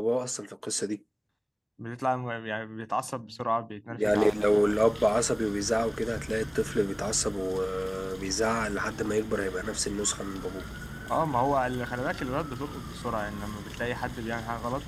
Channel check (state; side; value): identical; both; correlation 1.00